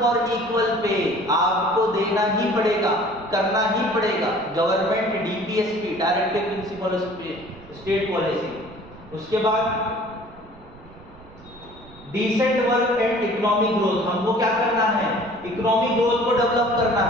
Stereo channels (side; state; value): right; noise; rumble, 22 dB below the sound